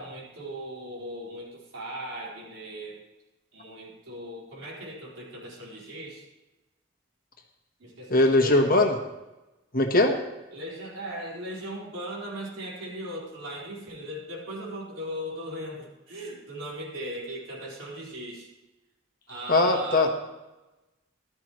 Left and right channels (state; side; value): normal; both; correlation 0.07